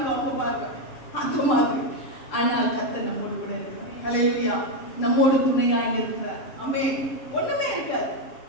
அவங்க பார்க்க, அந்த மாதிரி. ஆனால் கர்த்தர் நம்மோடு கூட இருக்கிறார். ஹல்லேலூயா. நம்மோடு துணையாக இருக்கிறார். ஆமென். ஒண்ணுமே இருக்காது,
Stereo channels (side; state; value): right; late; 7.7 ms